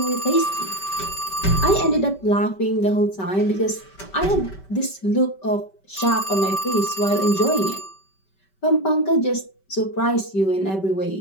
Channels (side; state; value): right; late; 5.2 ms